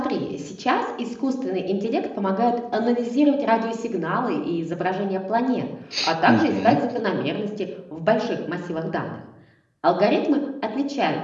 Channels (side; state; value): both; identical; correlation 1.00